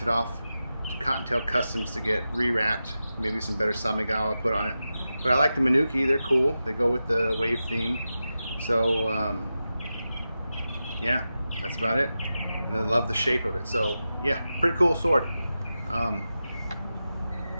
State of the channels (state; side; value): inverted; both; correlation -0.92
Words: it off to Cottontail Customs to get re-wrapped. Maybe some better Samigawa put on it. But I like the Minuki, they're cool. They go with the wave theme. So yeah, that's about it. And I love the shape of it. So yeah, pretty cool sword. Let me